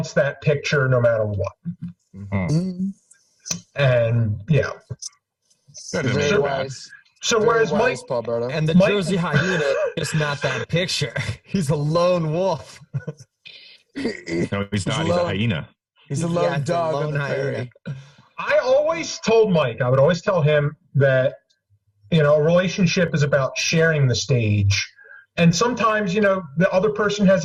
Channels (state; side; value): identical; both; correlation 1.00